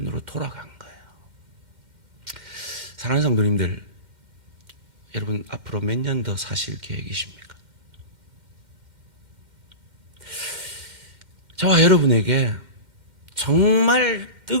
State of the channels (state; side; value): late; left; 2.1 ms